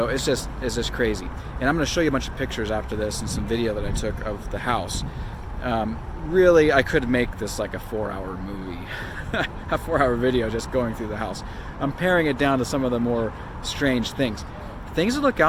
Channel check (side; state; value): both; identical; correlation 1.00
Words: it's just crazy. And I'm going to show you a bunch of pictures after this and some video that I took of the house. Really, I could make this like a 4-hour movie, a 4-hour video just going through the house. I'm paring it down to some of the more strange things. Things to look